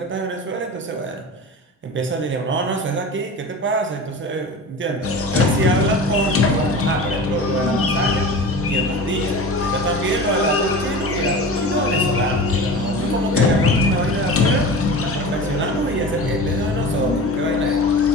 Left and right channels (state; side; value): normal; both; correlation 0.33